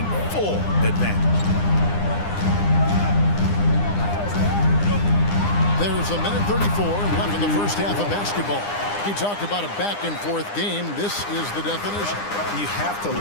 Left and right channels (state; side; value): late; right; 9.8 ms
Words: full advantage. There's a minute 34 left in the first half of basketball. He talked about a back-and-forth game. This is the definition. You have to